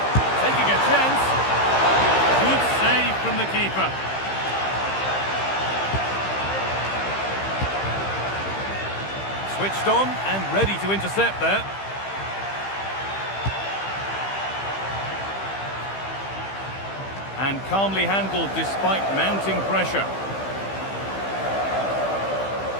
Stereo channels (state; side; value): late; right; 15 ms